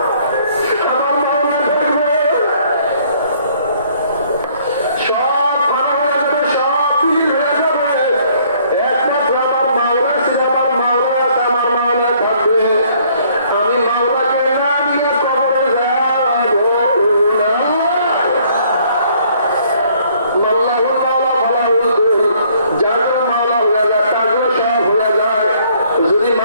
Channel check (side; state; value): both; inverted; correlation -0.62